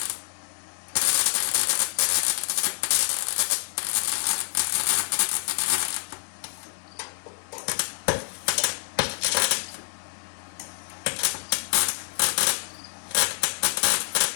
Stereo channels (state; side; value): silent; right; 60 dB below the other